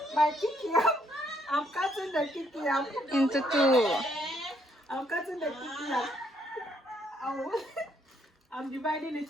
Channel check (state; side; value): normal; both; correlation 0.71